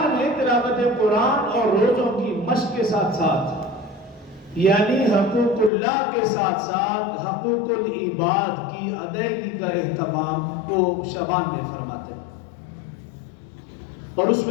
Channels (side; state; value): right; drops out; at 5.7 s